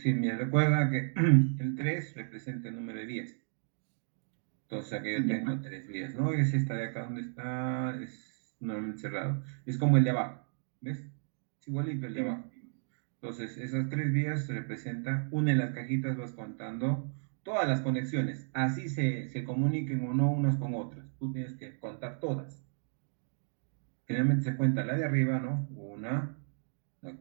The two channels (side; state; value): left; silent; digital silence